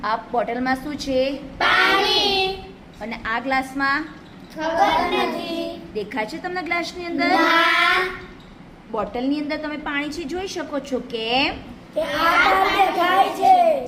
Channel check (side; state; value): both; identical; correlation 1.00